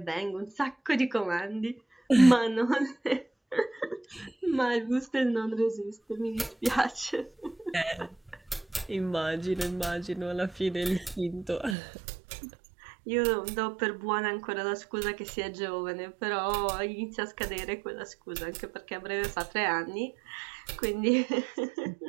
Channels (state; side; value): drops out; left; at 11.8 s